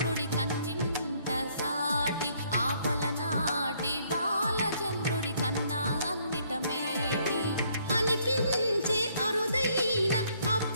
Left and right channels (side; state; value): both; inverted; correlation -0.66